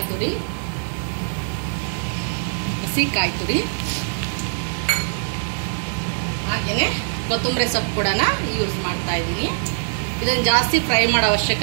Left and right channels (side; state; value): left; silent; digital silence